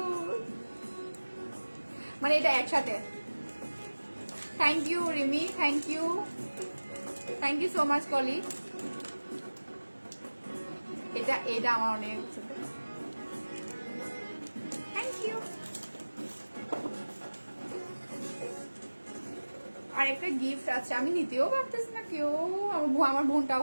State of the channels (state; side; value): inverted; both; correlation -1.00